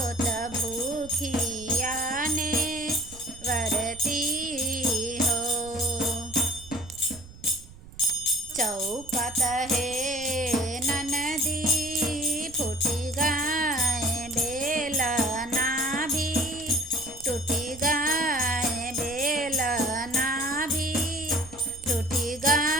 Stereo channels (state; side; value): noise; right; rumble, 19 dB below the sound